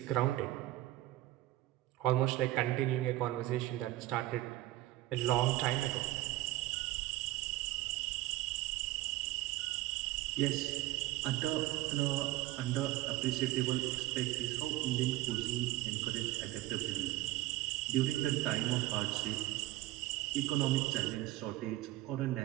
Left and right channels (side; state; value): left; quieter; 16.8 dB